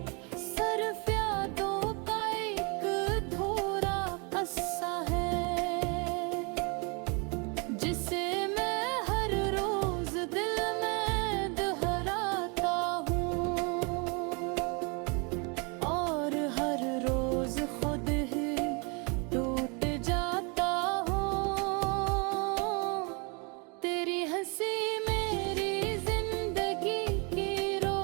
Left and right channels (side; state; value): left; quieter; 32.4 dB